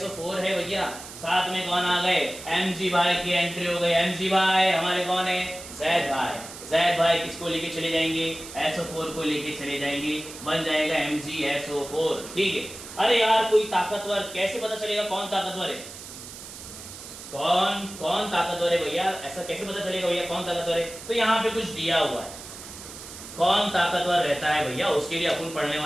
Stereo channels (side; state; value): right; noise; hiss, 13 dB below the sound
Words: है भैया, साथ में कौन आ गए, Mg भाई की एंट्री हो गई। Mg भाई हमारे कौन है, जैद भाई किसको लेके चले जाएंगे, SO4 को लेके चले जाएंगे, बन जाएगा MgSO4। ठीक है, अरे यार कोई ताकतवर, कैसे पता चलेगा कौन ताकतवर है, कौन ताकतवर है भैया, ऐसा कैसे पता चलेगा भैया कौन ताकतवर है, तो यहाँ पे कुछ दिया हुआ है, कौन ताकतवर रहता है भैया, उसके लिए अपन पढ़ने